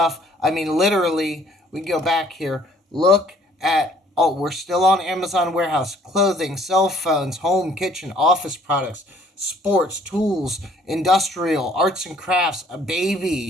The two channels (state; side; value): normal; both; correlation 0.59